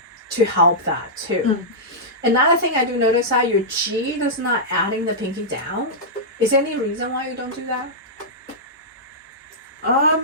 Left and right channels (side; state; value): both; normal; correlation -0.12